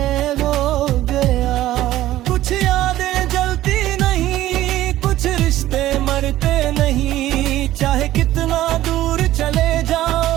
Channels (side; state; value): left; quieter; 14.6 dB